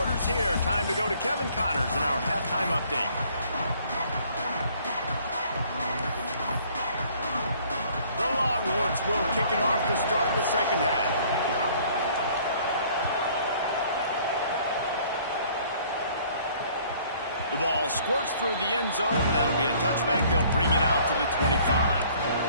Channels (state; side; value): inverted; both; correlation -0.58